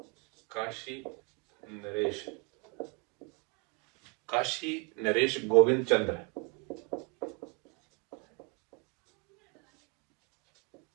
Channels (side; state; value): left; quieter; 30.6 dB